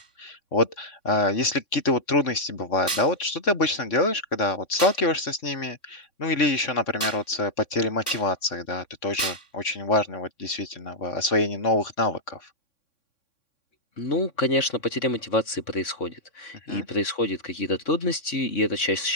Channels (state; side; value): late; right; 3.6 ms